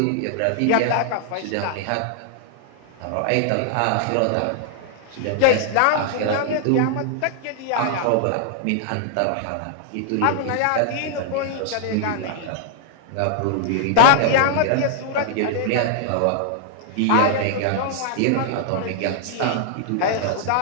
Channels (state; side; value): different; both; correlation -0.01